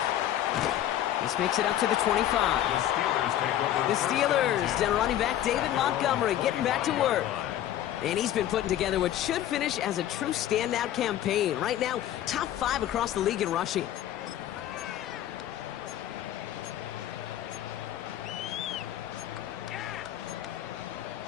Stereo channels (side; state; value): right; quieter; 12.1 dB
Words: This makes it up to the 25. The Steelers take over. The Steelers, down running back David Montgomery, getting back to work. And he's been putting together what should finish as a true standout campaign. Right now, top 5 across the league in rushing.